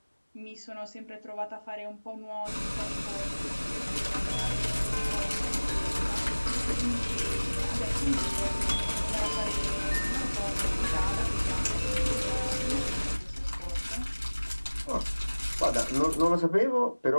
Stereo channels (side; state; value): both; inverted; correlation -1.00